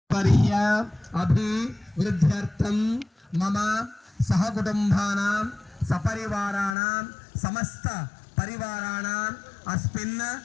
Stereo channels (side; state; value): right; drops out; at 6.8 s